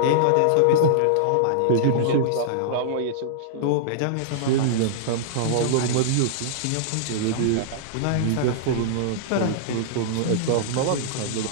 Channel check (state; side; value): different; both; correlation -0.02